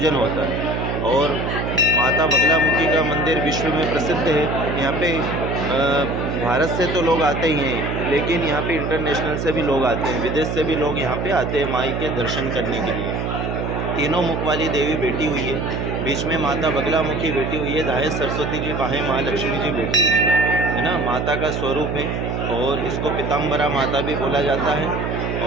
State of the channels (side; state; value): right; noise; hum, 2 dB below the sound